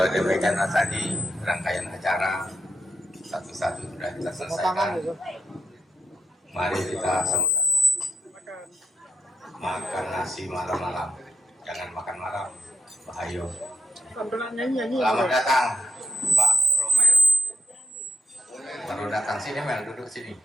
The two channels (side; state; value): both; normal; correlation 0.80